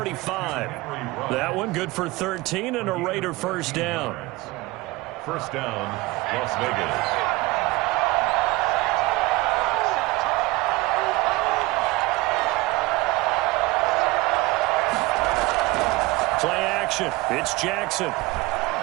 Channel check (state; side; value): quieter; left; 21.6 dB